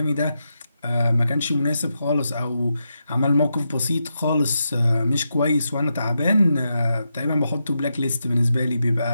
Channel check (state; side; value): inverted; both; correlation -0.86